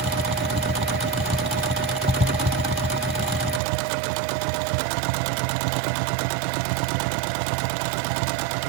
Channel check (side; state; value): left; drops out; at 3.6 s